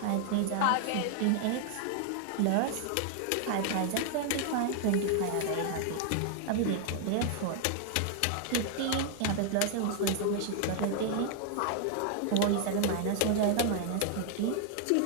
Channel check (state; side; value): different; both; correlation 0.00